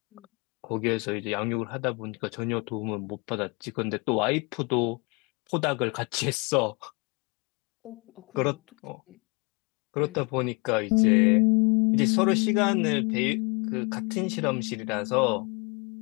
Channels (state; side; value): quieter; right; 30.8 dB